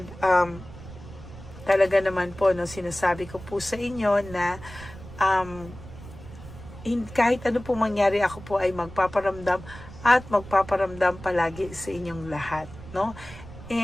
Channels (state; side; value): noise; right; rumble, 16 dB below the sound